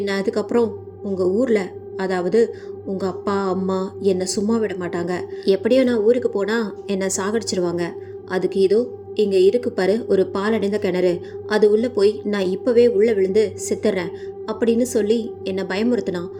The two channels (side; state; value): both; identical; correlation 1.00